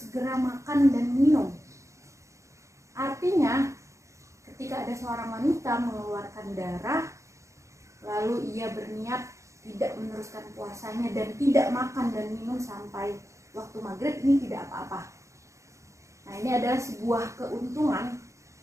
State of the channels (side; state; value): left; late; 0.15 ms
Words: makan dan minum. Artinya, ketika ada seorang wanita mengeluarkan darah, lalu ia berniat tidak meneruskan puasanya dan tidak makan dan minum sampai waktu maghrib, ini tidak apa-apa. Nah, ini adalah sebuah keuntungan